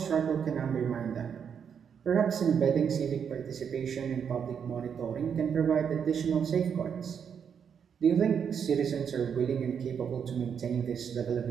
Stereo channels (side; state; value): left; quieter; 7.4 dB